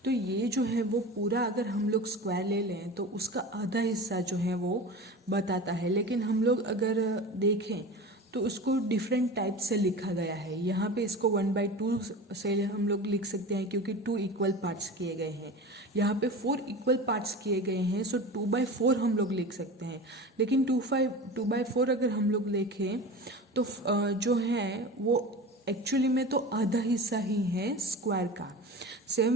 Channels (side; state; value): both; normal; correlation 0.32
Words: तो ये जो है वो पूरा अगर हम लोग स्क्वायर ले लें तो उसका आधा हिस्सा जो है वो बताता है। लेकिन हम लोग अगर देखें तो उसको डिफरेंट टाइप से लिखा गया है। यहाँ पे इसको 1/2 से हम लोग लिख सकते हैं क्योंकि 2 इक्वल पार्ट्स किए गए हैं। यहाँ पे 4 इक्वल पार्ट्स किए गए हैं, सो 2/4 हम लोग लिख सकते हैं। लेकिन 2/4 अगर हम लोग लिखें तो जो है वो एक्चुअली में तो आधा हिस्सा ही है स्क्वायर का।